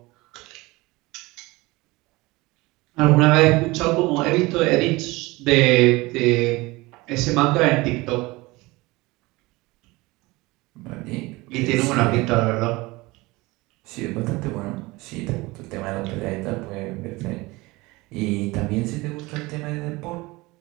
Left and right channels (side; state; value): left; quieter; 22.1 dB